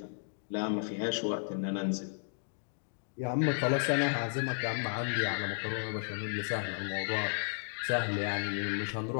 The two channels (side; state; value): right; silent; digital silence